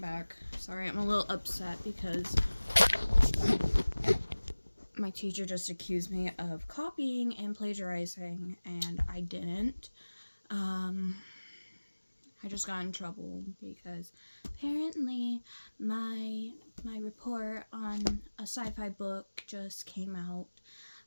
Sorry, I'm a little upset because my teacher just accused me of copying and plagiarizing, and I didn't. I just got in trouble because apparently my report on a sci-fi book just came out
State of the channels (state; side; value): inverted; both; correlation -1.00